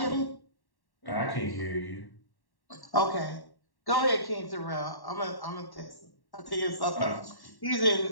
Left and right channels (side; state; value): right; late; 1.1 ms